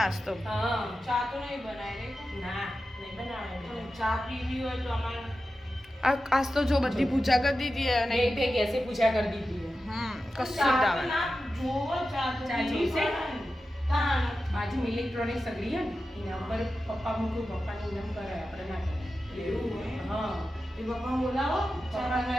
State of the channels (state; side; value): normal; both; correlation 0.92